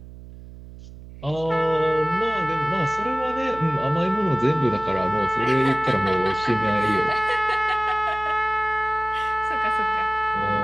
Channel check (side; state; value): right; noise; hum, 16 dB below the sound